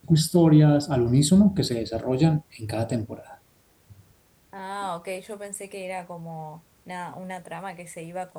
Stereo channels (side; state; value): both; identical; correlation 1.00